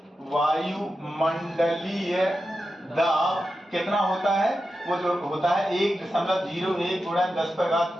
वायुमंडलीय दाब कितना होता है? वो जो होता है 1.01 गुणा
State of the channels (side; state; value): both; normal; correlation 0.90